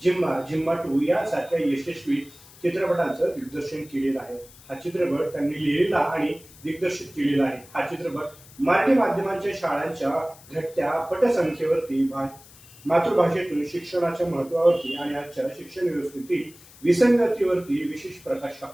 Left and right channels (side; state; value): left; noise; hiss, 22 dB below the sound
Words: जिम्मा जिम्मा 2 यासारख्या यशस्वी चित्रपटांचं दिग्दर्शन केलेलं आहे. हा चित्रपट त्यांनी लिहिलेला आणि दिग्दर्शित केलेला आहे. हा चित्रपट मराठी माध्यमांच्या शाळांच्या घटत्या पटसंख्येवरती मातृभाषेतून शिक्षणाच्या महत्वावरती आणि आजच्या शिक्षण व्यवस्थेतील विसंगतीवरती विशेष प्रकाश